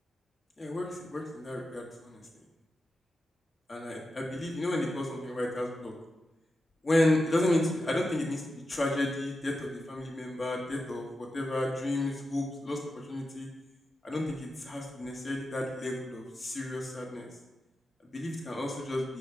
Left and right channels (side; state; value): both; normal; correlation 0.90